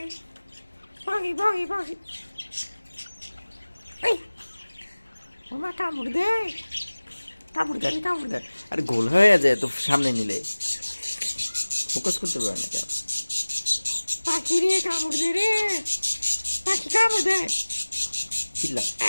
পাখি পাখি পাখি এই ওমা কামড় দে কামড় দে। আরে গোল হয়ে যায় তো সামনে নিলে ফোকাস করতে পারে না কেন? পাখি রে কামড় দে রে পাখি কামড় দে চিল্লা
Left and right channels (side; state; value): both; inverted; correlation -1.00